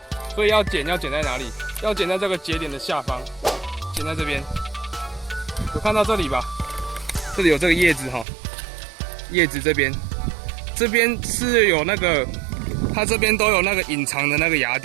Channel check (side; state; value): left; drops out; at 8.2 s